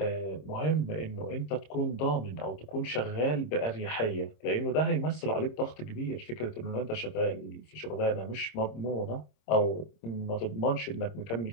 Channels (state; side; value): late; right; 26 ms